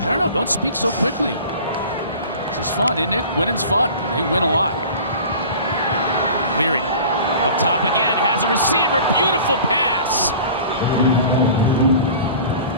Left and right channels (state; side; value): inverted; both; correlation -0.42